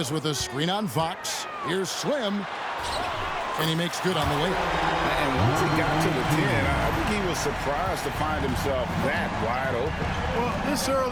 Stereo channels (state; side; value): identical; both; correlation 1.00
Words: with a screen on Fox. Here's Slim. And he makes good on the layup. And once he got to the 10, I think he was surprised to find himself that wide open. Well, this